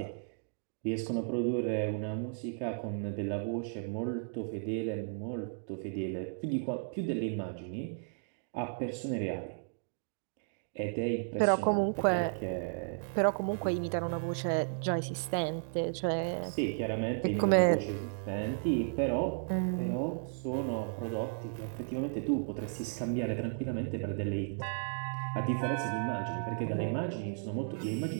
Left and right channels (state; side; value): silent; left; digital silence